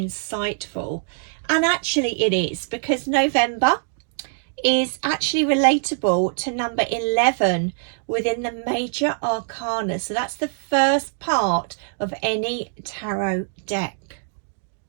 and actually it is, because November is actually relatable to number 11 within the major arcana. So that's the first part of any tarot deck.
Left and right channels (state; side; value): silent; left; digital silence